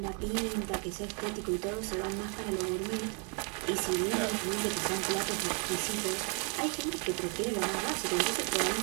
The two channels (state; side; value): quieter; left; 37.6 dB